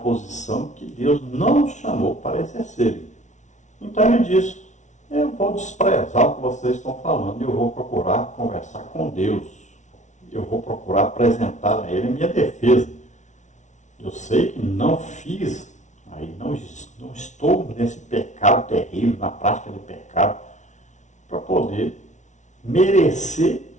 que Deus não os chamou para exercerem. Então ele diz: eu vou desprezar o que vocês estão falando, eu vou procurar conversar com Deus, eu vou procurar apresentar a Ele a minha defesa. Eu sei que não fiz, aí não estou nesse pecado terrível, na prática de pecado, para poder merecer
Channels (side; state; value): right; late; 0.35 ms